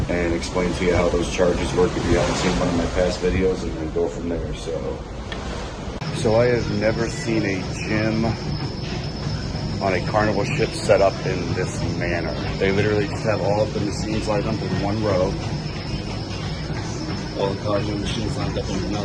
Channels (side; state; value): both; identical; correlation 1.00